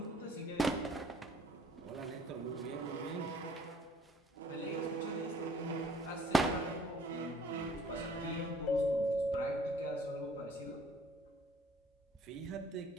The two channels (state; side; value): normal; both; correlation 0.56